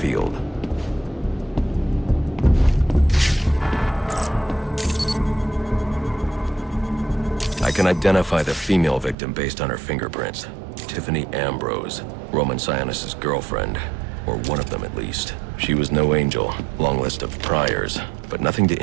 I can identify the female victim based on her fingerprints. Tiffany Ambrose, Roman Sionis' girlfriend, or one of them at least. She was no angel, long list of priors, but nothing to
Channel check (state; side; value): drops out; left; at 9.2 s